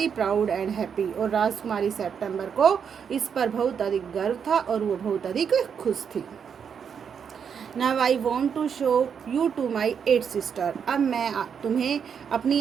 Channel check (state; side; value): quieter; left; 7.2 dB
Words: proud and happy, और राजकुमारी सेप्टेम्बर को इस पर बहुत अधिक गर्व था और वो बहुत अधिक खुश थी। Now I want to show you to my 8 sister, अब मैं तुम्हें अपनी